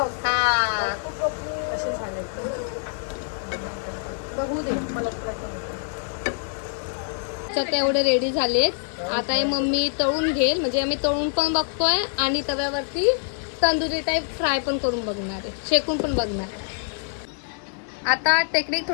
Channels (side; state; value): right; silent; digital silence